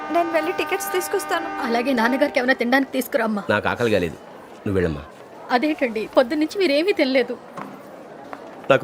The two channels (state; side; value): identical; both; correlation 1.00